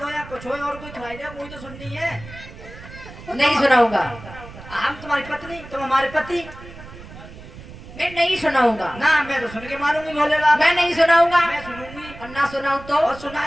हो या कुछ हो और कोई थोड़ी दे, मुझे तो सुननी है। नहीं सुनाऊंगा। हम तुम्हारी पत्नी, तुम हमारे पति। मैं नहीं सुनाऊंगा। ना मैं तो सुन के मारूंगी भोले बाबा। मैं नहीं सुनाऊंगा। मैं सुनूंगी। और ना सुनाऊं तो? और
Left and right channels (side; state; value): right; noise; rumble, 16 dB below the sound